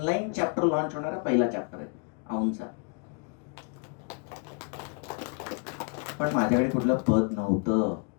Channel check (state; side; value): quieter; right; 36.3 dB